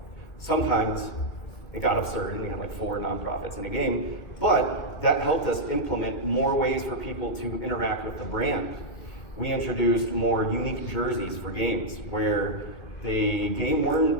Sometimes it got absurd and we had like 4 nonprofits in a game, but that helped us implement more ways for people to interact with the brand. We introduced more unique jerseys for games where the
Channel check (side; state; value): right; late; 2.4 ms